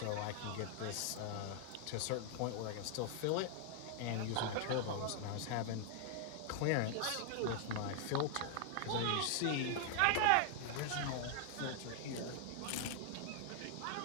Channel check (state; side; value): different; both; correlation 0.00